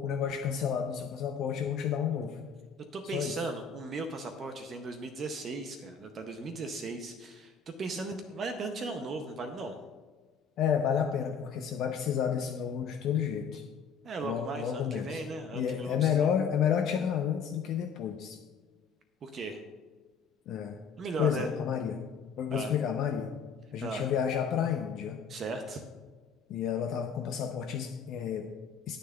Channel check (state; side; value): quieter; right; 5.8 dB